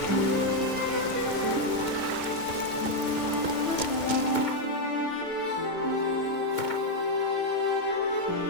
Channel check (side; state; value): right; late; 2.2 ms